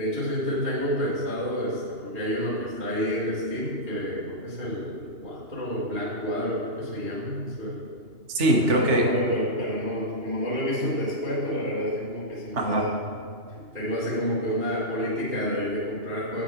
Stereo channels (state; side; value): late; left; 2.8 ms